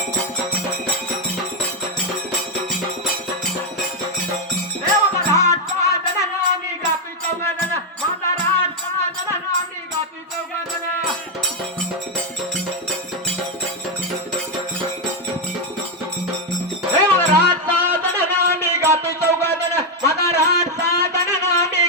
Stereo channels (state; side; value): normal; both; correlation 0.04